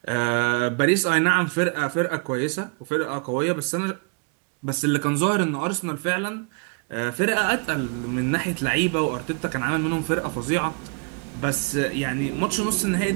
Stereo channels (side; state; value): left; quieter; 35.3 dB